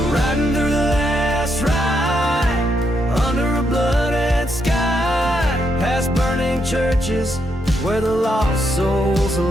Riding through the last ride under a blooded sky, past burning churches where the lost souls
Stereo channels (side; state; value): both; normal; correlation 0.79